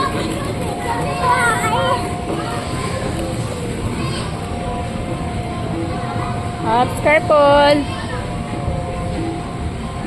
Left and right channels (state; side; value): identical; both; correlation 1.00